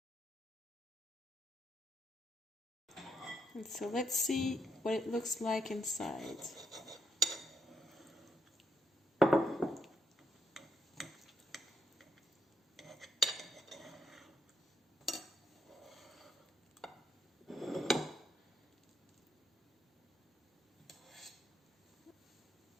And so let's see what it looks like inside.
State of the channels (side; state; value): both; normal; correlation 0.74